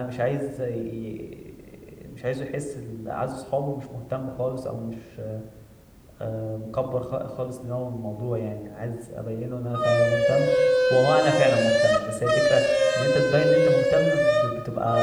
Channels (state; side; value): identical; both; correlation 1.00